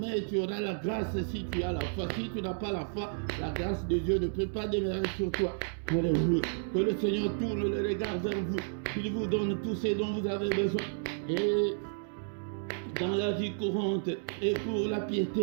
tu auras la grâce si tu as la foi. Si tu n'as pas la foi, la grâce de Dieu ne peut pas demeurer sur toi. Alléluia. Que le Seigneur tourne le regard vers vous, qu'il vous donne tout ce dont vous avez besoin. Et dans la vie courante et pour la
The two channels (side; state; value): left; silent; digital silence